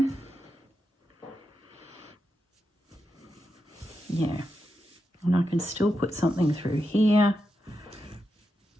Yeah, and I can still put something through here.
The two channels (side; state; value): both; normal; correlation 0.87